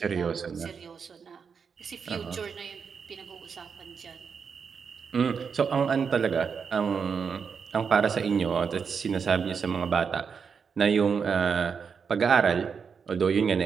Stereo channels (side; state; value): left; quieter; 6.2 dB